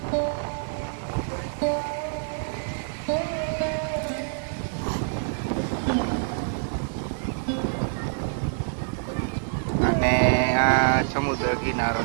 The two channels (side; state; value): left; silent; digital silence